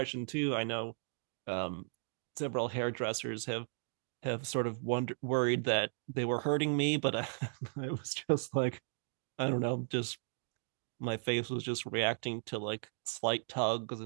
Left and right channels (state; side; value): silent; left; digital silence